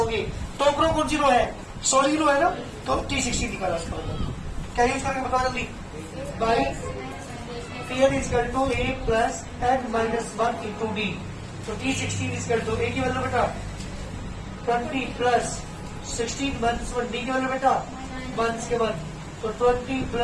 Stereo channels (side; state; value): both; identical; correlation 1.00